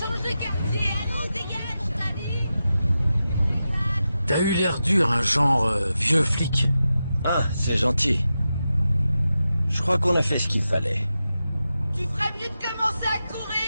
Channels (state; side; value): inverted; both; correlation -0.91